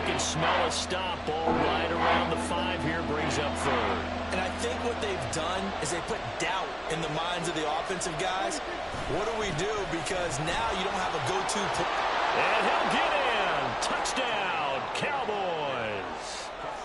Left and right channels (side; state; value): both; identical; correlation 1.00